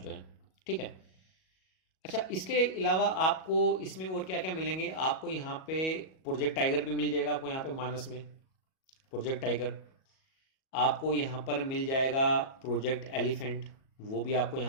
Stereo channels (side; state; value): right; late; 37 ms